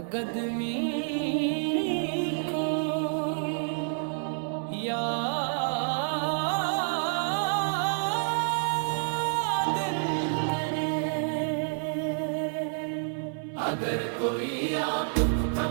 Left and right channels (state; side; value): silent; left; 58 dB below the other